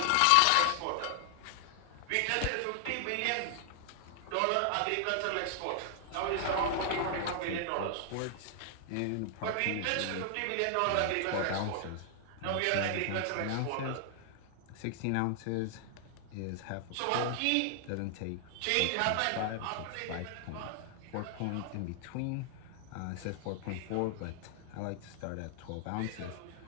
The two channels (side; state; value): both; different; correlation 0.00